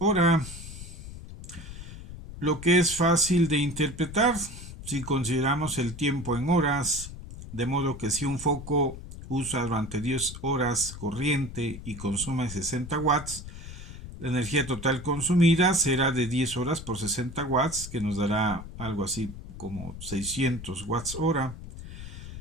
lo que es fácil de interpretar si consideramos el tiempo en horas, de modo que si un foco usa durante 10 horas corriente y consume 60 watts, la energía total consumida será de 10 horas por 60 watts, que nos dará algo así como 600 watts hora.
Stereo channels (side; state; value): left; noise; rumble, 12 dB below the sound